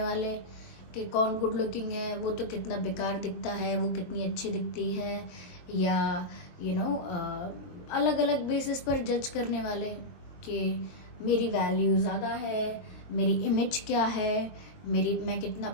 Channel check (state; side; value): late; right; 22 ms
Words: वाले, कि कौन गुड लुकिंग है, वो तो कितना बेकार दिखता है, वो कितनी अच्छी दिखती है, या अलग अलग बेसिस पर जज करने वाले कि मेरी वैल्यू ज़्यादा है, मेरी इमेज क्या है, मैं कितना